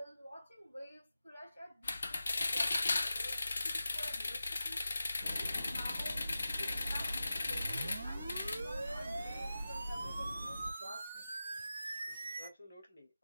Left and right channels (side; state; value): both; inverted; correlation -0.94